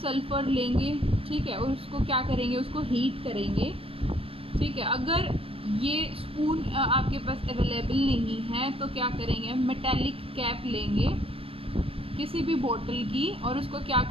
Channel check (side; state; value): left; late; 0.27 ms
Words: sulphur लेंगे. ठीक है, और उसको क्या करेंगे? उसको हीट करेंगे. ठीक है, अगर ये स्पून आपके पास अवेलेबल नहीं है तो क्या करेंगे? मेटेलिक कैप लेंगे किसी भी बोतल की और उसको क्या